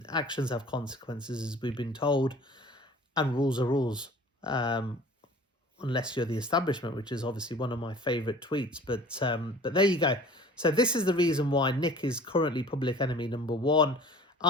actions have consequences, as we've been told. And rules are rules. Unless you're the establishment, which is obviously one of my favourite tweets. But there you go. So this is the reason why Nick is currently public enemy #1.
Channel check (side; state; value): both; normal; correlation 0.46